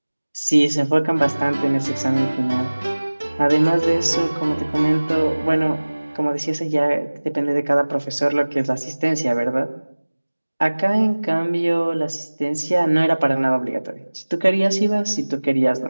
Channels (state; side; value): inverted; both; correlation -1.00